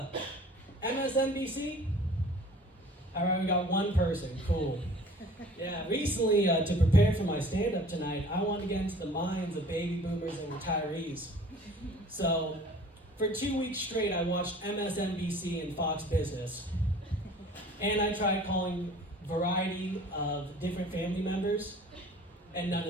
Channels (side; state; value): both; normal; correlation 0.48